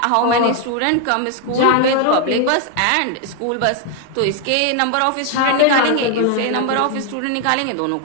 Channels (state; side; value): different; both; correlation 0.00